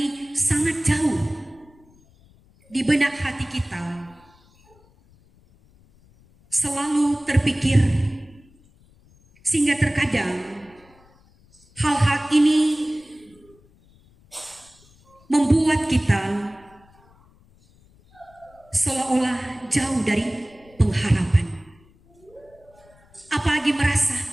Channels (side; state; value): left; noise; rumble, 29 dB below the sound